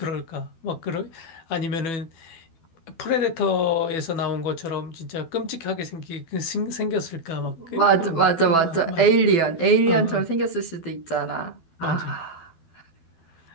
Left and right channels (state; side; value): late; right; 12 ms